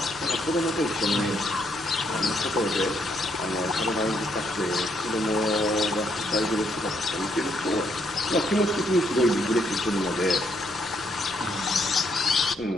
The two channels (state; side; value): noise; left; rumble, 26 dB below the sound